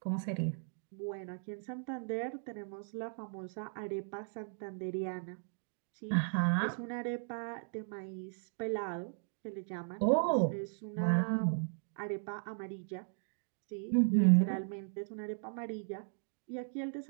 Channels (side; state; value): left; silent; digital silence